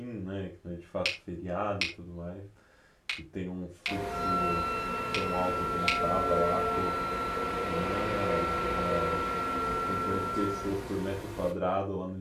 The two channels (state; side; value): identical; both; correlation 1.00